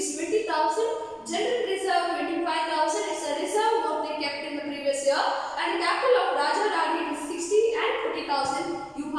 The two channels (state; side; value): identical; both; correlation 1.00